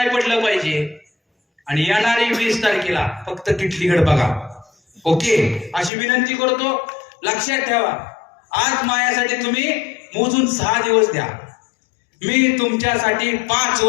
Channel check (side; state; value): right; drops out; at 5.9 s